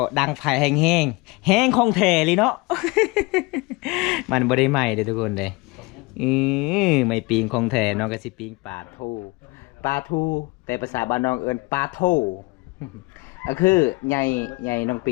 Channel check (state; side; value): quieter; right; 25.4 dB